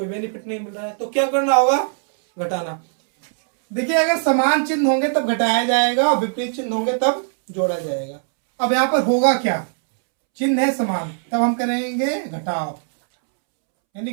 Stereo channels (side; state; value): left; silent; 66 dB below the other